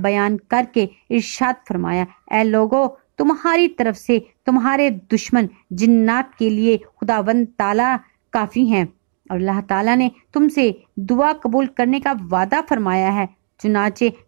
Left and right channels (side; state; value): left; silent; digital silence